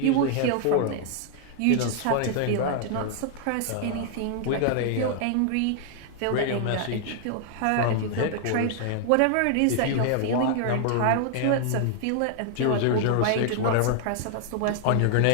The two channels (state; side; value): different; both; correlation -0.01